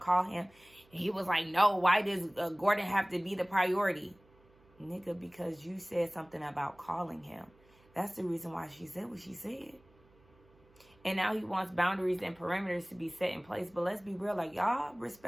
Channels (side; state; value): right; noise; hum, 30 dB below the sound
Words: him? And he was like, no, why does Gordon have to be the priority? Nigga, because you said something about calling him. That's the reason why she said what she said. And now he wants boundaries and parameters to be set in place. But let's be real, like, y'all